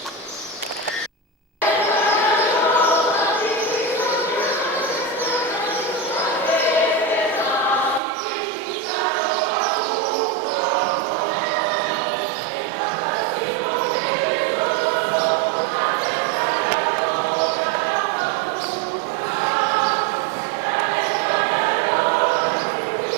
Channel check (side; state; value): left; drops out; at 8.0 s